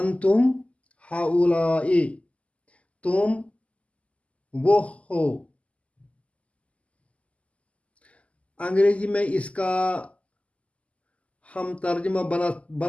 ہاؤلائی تم وہ ہو۔ انگریزی میں اس کا ہم ترجمہ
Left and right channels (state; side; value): late; right; 0.064 ms